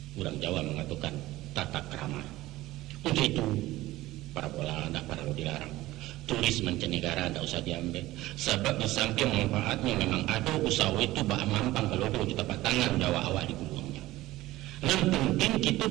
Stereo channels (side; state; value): left; quieter; 17.2 dB